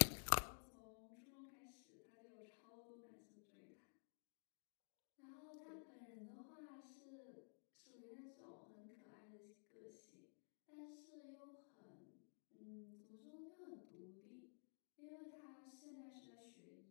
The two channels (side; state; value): right; silent; digital silence